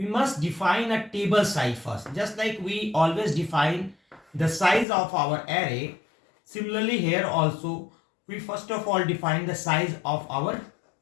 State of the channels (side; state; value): right; drops out; at 4.9 s